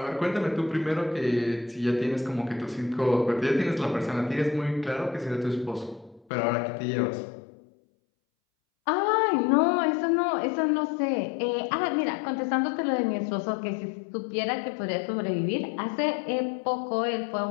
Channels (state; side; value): drops out; right; at 6.2 s